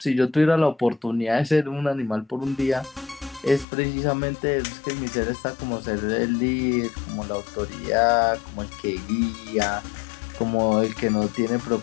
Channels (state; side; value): drops out; right; at 3.7 s